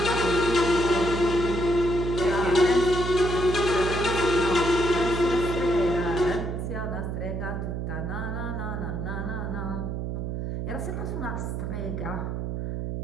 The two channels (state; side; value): noise; right; hum, 3 dB below the sound